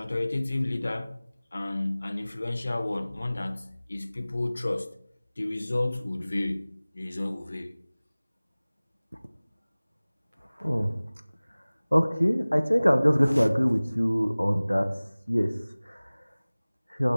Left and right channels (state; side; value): inverted; both; correlation -0.99